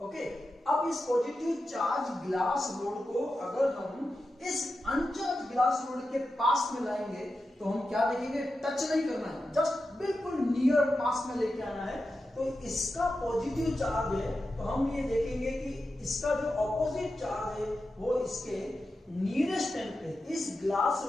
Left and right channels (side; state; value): both; normal; correlation 0.91